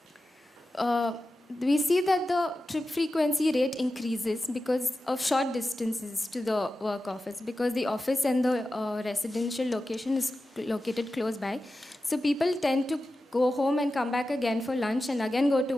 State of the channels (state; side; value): normal; both; correlation 0.93